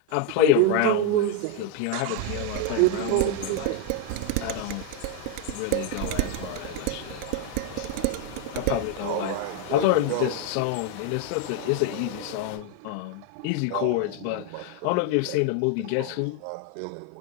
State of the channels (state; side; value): different; both; correlation 0.01